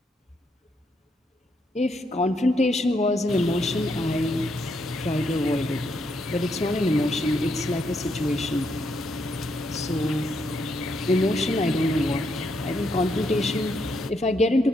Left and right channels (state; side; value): normal; both; correlation 0.77